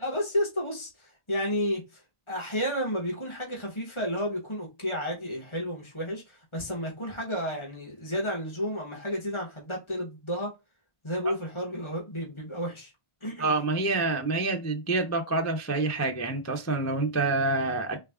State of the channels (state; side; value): late; right; 1.4 ms